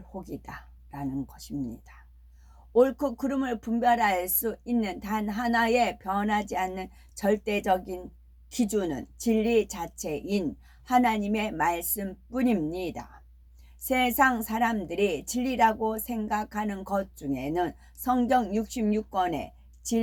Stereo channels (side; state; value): both; identical; correlation 1.00